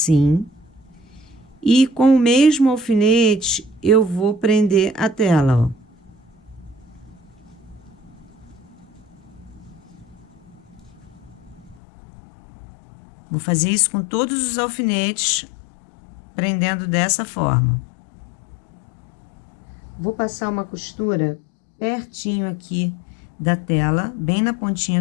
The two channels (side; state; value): right; drops out; at 11.8 s